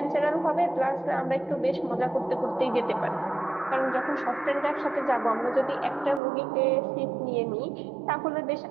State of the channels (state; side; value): drops out; left; at 6.2 s